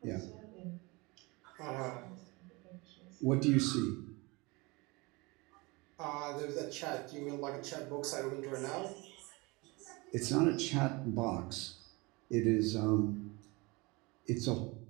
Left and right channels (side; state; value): left; quieter; 25.4 dB